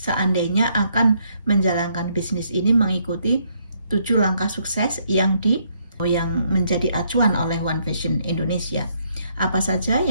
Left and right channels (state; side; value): inverted; both; correlation -0.72